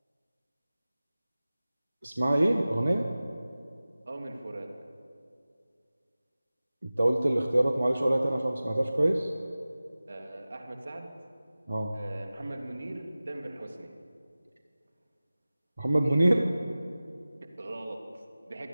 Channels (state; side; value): inverted; both; correlation -0.97